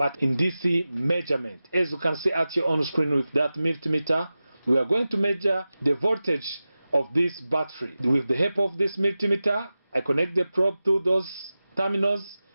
in DC measurement. As you can see at your own screen with that multimeter, we are going to measure the voltage of this battery. With the help of this multimeter, I connect the probe to those terminals.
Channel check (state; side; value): inverted; both; correlation -0.95